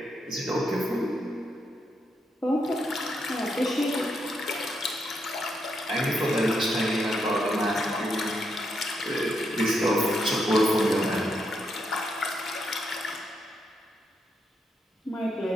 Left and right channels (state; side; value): normal; both; correlation 0.80